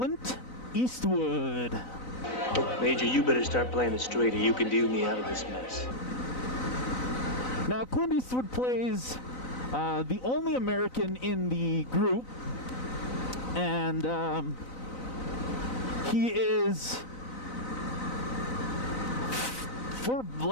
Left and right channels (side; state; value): right; late; 4.0 ms